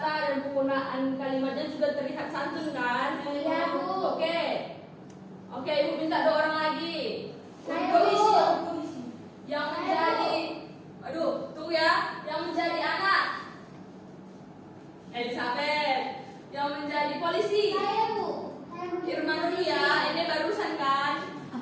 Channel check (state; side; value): identical; both; correlation 1.00